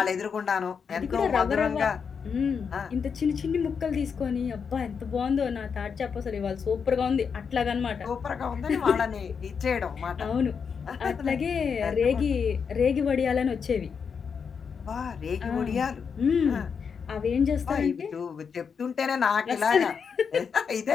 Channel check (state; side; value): quieter; right; 6.3 dB